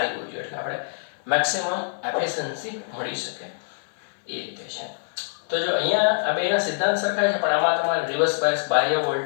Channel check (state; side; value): silent; right; digital silence